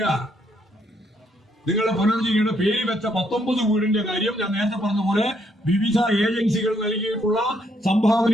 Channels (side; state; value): both; normal; correlation 0.72